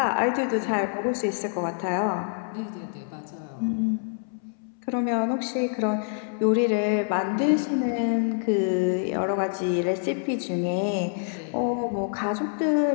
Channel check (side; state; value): right; silent; 61 dB below the other